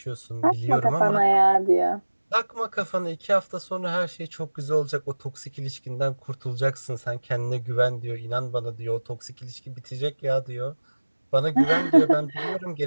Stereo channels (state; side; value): inverted; both; correlation -1.00